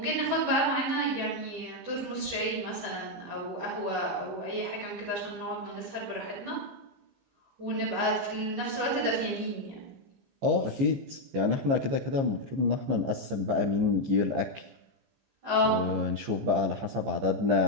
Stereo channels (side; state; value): left; late; 15 ms